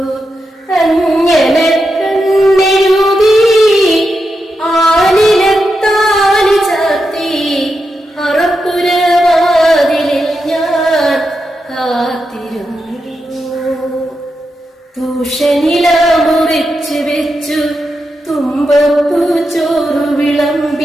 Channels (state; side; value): normal; both; correlation 0.87